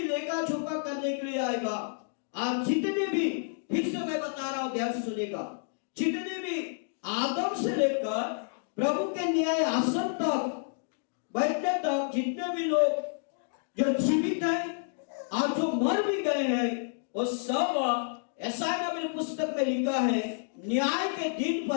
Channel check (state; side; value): silent; right; digital silence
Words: लेखा जोखा करने के लिए आएगा। और जितने भी, फिर से मैं बता रहा हूं, ध्यान सुनेगा, जितने भी आदम से लेकर प्रभु के न्याय आसन तक बैठने तक जितने भी लोग जो जीवित हैं और जो मर भी गए हैं, वो सब, ऐसा मेरे पुस्तक में लिखा है, न्याय के दिन